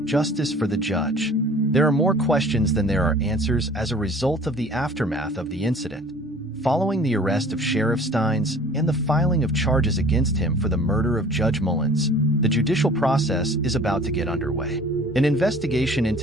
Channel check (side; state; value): both; normal; correlation 0.48